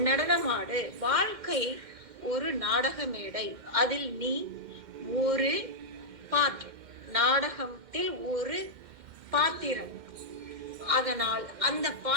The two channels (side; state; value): left; late; 2.1 ms